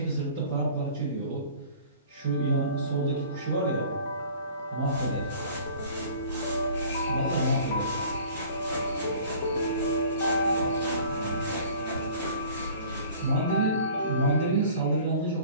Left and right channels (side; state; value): both; inverted; correlation -0.47